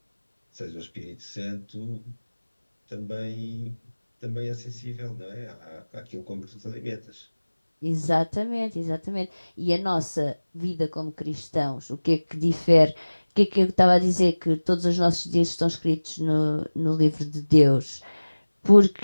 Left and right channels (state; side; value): inverted; both; correlation -1.00